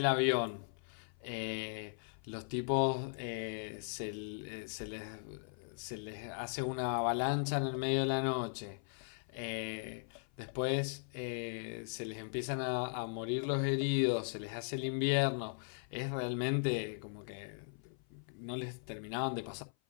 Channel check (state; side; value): silent; right; 52 dB below the other